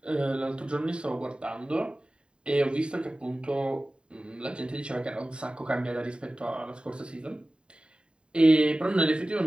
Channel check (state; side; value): late; left; 0.052 ms